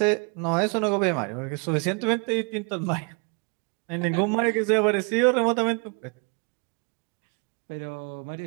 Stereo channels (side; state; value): left; quieter; 34.8 dB